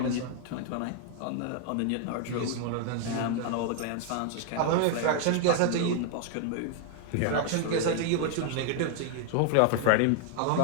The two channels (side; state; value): both; different; correlation 0.00